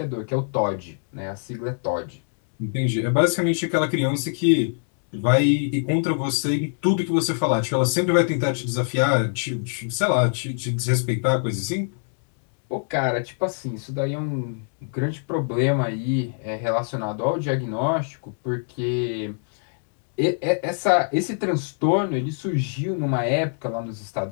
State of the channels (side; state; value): right; silent; digital silence